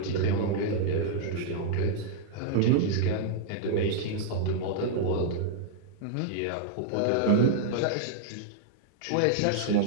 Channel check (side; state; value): both; different; correlation -0.01